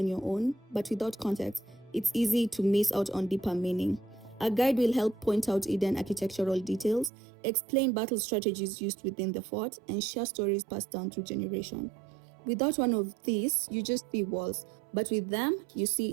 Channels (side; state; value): left; drops out; at 7.1 s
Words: your own, but without context, it's easy to miss out on deeper meaning. A guide will help point out hidden architectural details, explain battle strategies used within the fort, and share stories passed down through generations. Without one of these, you just see walls, but with them, you see